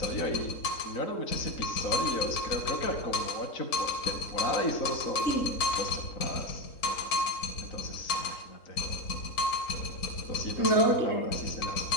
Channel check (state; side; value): late; right; 3.8 ms